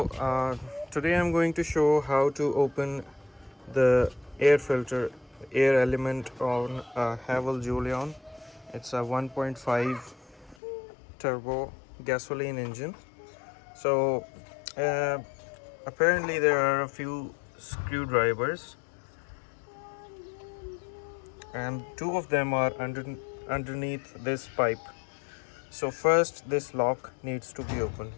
I'm going to show how to open the air filter, air element on a Haval Jolion. It's a 1.5 turbo gasoline engine. So uh, apparently there are a few screwdrivers and two of them are underneath this pipe. So first this lock needs to be opened.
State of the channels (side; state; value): right; drops out; at 10.6 s